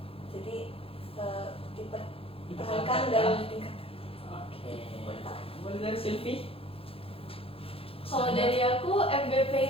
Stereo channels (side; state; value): right; late; 0.27 ms